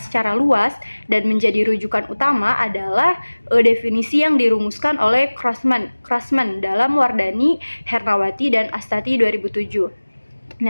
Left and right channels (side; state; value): both; inverted; correlation -1.00